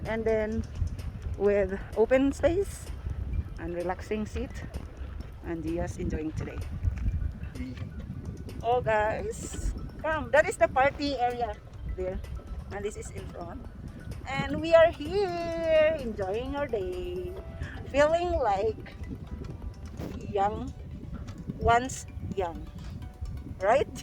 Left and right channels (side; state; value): both; identical; correlation 1.00